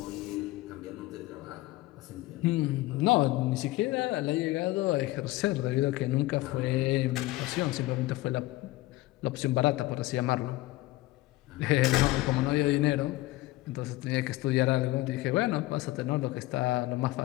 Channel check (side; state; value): right; quieter; 18.6 dB